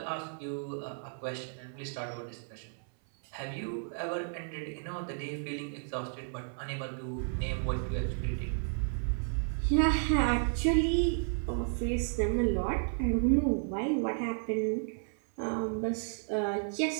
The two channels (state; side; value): silent; left; 56 dB below the other